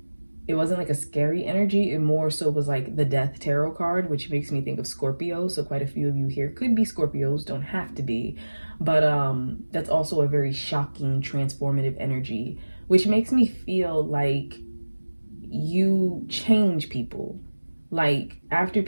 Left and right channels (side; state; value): both; inverted; correlation -1.00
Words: like a scary energy. It more so was like the Death Tarot card, which makes me think of Scorpio. So quite a few of you here could be Scorpios, don't have to be. But that's also a very shocking, transformative energy, which makes me feel like you change people. Like after